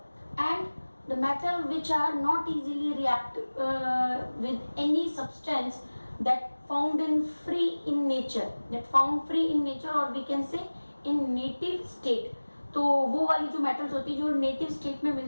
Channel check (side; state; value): both; inverted; correlation -1.00